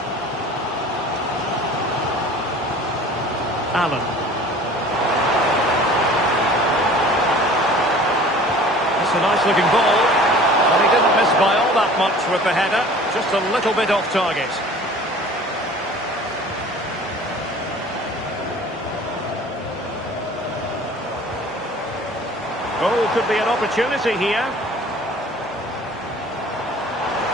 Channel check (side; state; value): both; normal; correlation 0.46